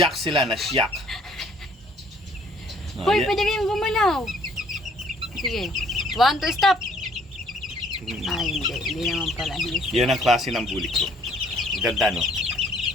sila, nasyak. Hoy, pwede kayong gumalaw. Sige. 1, 2, stop. Ay, hindi. Hindi naman pala. Yan ang klase ng bulik ko. Ganda, no?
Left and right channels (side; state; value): both; normal; correlation 0.61